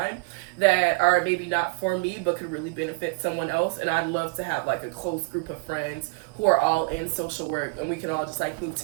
that are maybe not for me, but could really benefit someone else. And I'd love to have like a close group of friends who are all in social work, and we can all just like move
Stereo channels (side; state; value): left; quieter; 29.1 dB